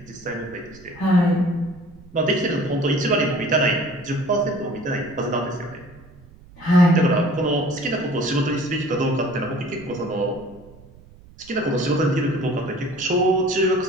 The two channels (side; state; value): right; noise; rumble, 23 dB below the sound